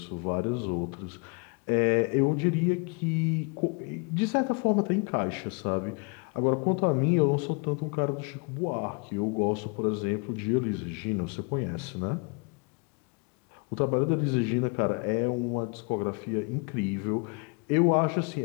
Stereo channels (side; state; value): right; quieter; 33.2 dB